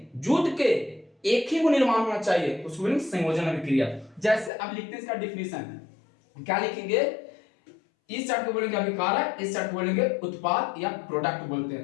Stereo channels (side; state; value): right; drops out; at 4.5 s